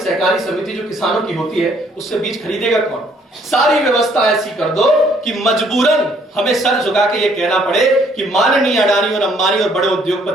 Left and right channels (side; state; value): both; normal; correlation 0.64